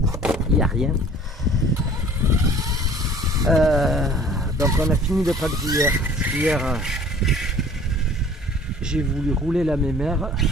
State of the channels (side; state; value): both; normal; correlation 0.50